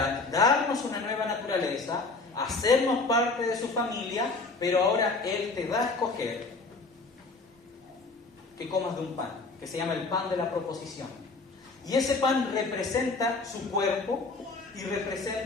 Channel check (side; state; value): right; quieter; 3.7 dB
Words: darnos una nueva naturaleza, hacernos parte de su familia, pero ahora Él te da a escoger que comas de un pan, que se llama el pan de la proposición. Y ese pan representa su cuerpo y